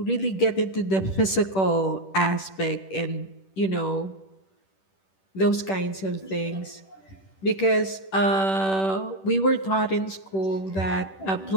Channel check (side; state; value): right; late; 10 ms